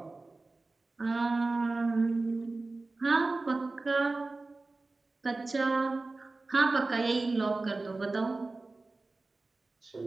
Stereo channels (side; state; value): left; quieter; 3.4 dB